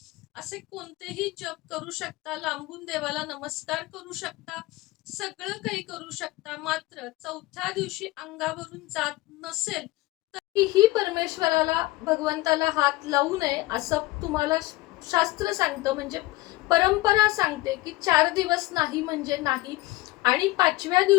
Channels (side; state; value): right; quieter; 19.4 dB